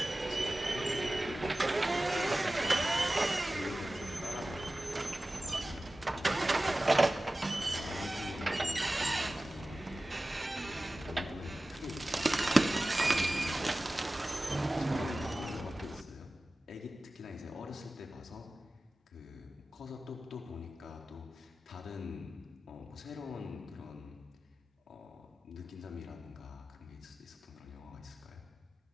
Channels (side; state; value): both; normal; correlation 0.96